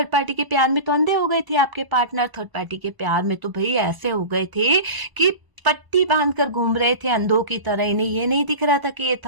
पार्टी के प्यार में तो अंधे हो गए थे आपके पार्टनर। थर्ड पार्टी के प्यार में तो भाई ऐसे हो गए थे कि पट्टी बांधकर घूम रहे थे अंधों की तरह। इन्हें ये नहीं दिख रहा था कि ये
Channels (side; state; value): left; late; 1.0 ms